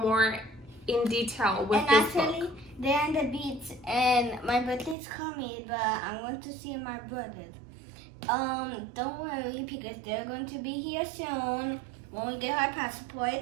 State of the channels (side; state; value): left; drops out; at 5.0 s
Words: in detail with and this actually, book. they're on the beach, and my birthday's coming, but I'm going to see my brothers. Don't worry because they're going to be here soon when we get our